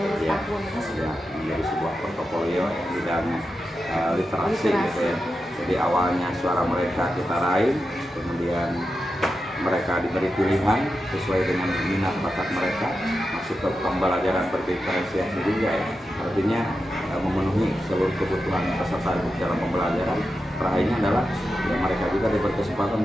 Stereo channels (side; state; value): both; normal; correlation 0.89